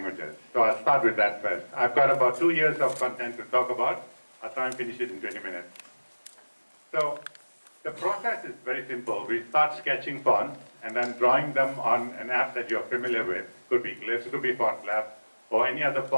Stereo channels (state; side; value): inverted; both; correlation -1.00